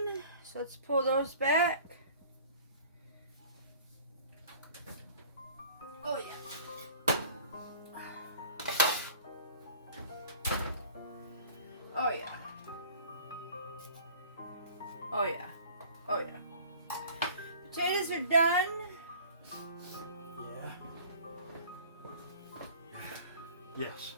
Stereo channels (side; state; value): both; inverted; correlation -0.47